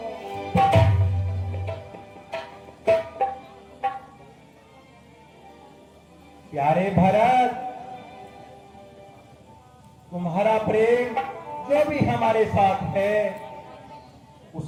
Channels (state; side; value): identical; both; correlation 1.00